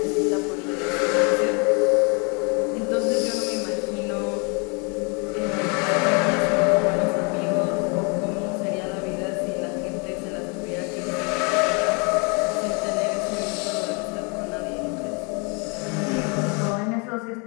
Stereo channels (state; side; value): quieter; right; 33.3 dB